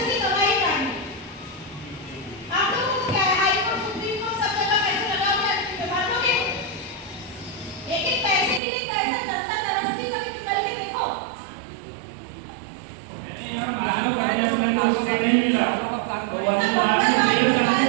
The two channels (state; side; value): drops out; left; at 8.6 s